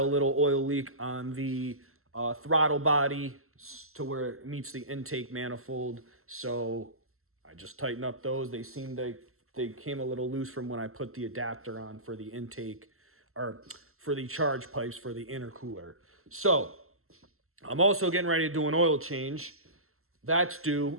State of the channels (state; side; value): late; left; 0.62 ms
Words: little oil leak on the throttle body to where it meets the intake manifold. So I just tightened up those. They came a little loose from when I put the adapter on for the intake, or for the charge pipes for the intercooler. So I'm also getting ready to do an oil change. That's